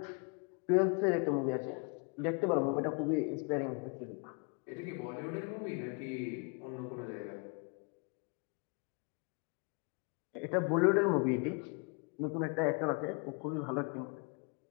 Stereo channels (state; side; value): quieter; right; 36.0 dB